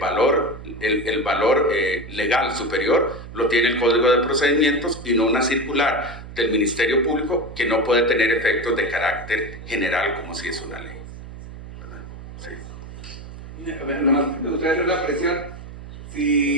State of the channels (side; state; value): right; noise; hum, 13 dB below the sound